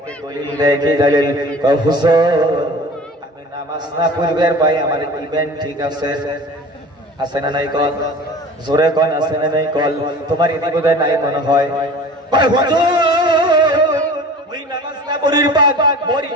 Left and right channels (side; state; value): both; normal; correlation 0.41